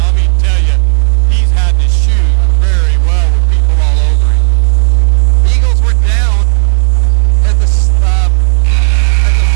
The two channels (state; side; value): silent; left; digital silence